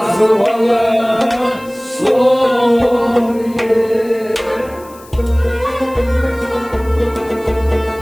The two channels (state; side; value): noise; left; hiss, 24 dB below the sound